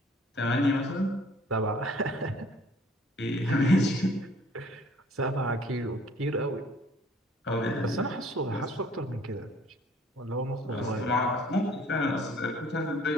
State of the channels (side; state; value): both; normal; correlation 0.55